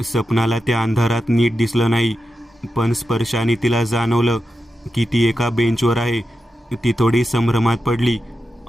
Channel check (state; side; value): normal; both; correlation 0.90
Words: सपनाला त्या अंधारात नीट दिसलं नाही, पण स्पर्शाने तिला जाणवलं की ती एका बेंचवर आहे. ती थोडी संभ्रमात पडली.